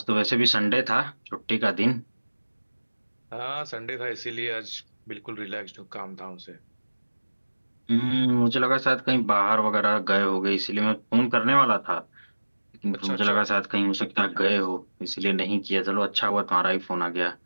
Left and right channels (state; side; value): inverted; both; correlation -1.00